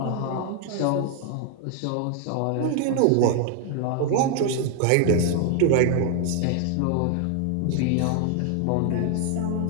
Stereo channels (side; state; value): both; different; correlation 0.00